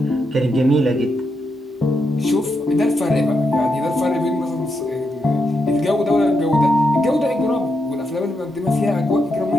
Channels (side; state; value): both; normal; correlation 0.83